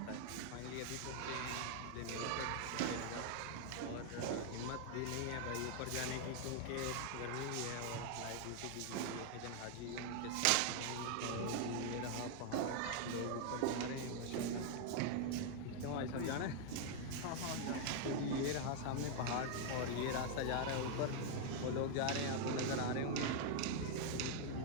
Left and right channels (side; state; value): both; different; correlation 0.00